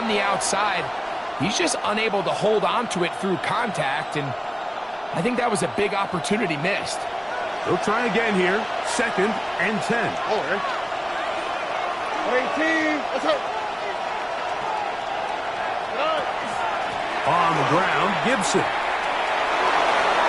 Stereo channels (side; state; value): both; identical; correlation 1.00